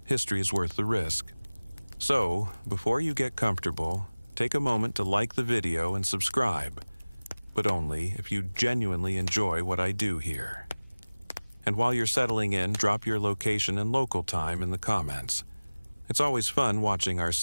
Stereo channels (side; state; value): both; inverted; correlation -1.00